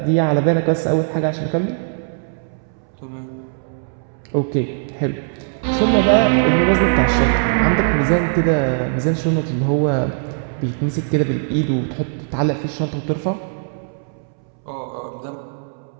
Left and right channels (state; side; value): silent; left; 66 dB below the other